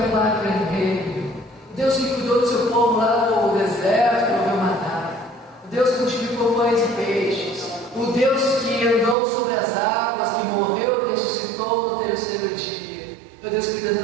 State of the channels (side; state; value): left; drops out; at 9.2 s